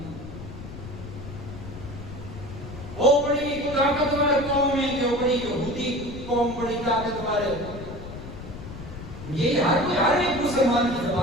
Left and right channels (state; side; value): noise; left; rumble, 12 dB below the sound